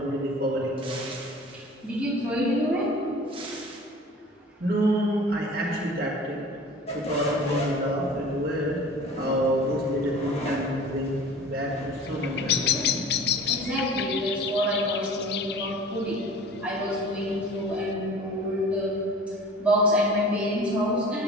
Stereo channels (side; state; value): both; normal; correlation 0.42